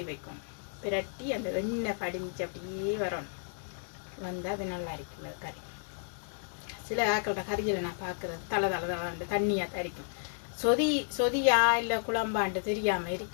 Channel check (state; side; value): silent; right; digital silence